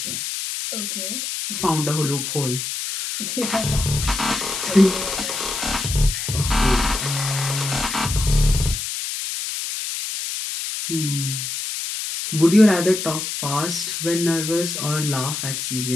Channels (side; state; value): left; noise; hiss, 4 dB below the sound